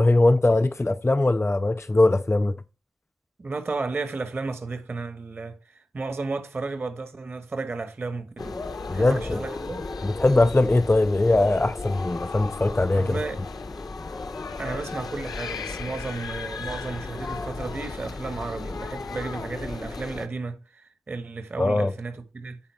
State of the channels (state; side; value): normal; both; correlation 0.95